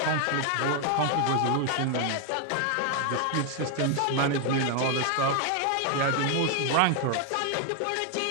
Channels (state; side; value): different; both; correlation 0.01